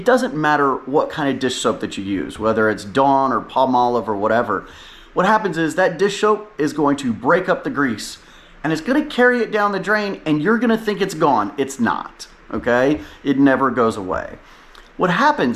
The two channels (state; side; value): identical; both; correlation 1.00